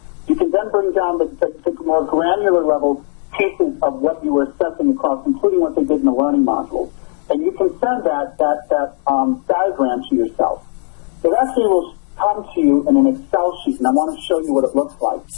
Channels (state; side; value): silent; right; 56 dB below the other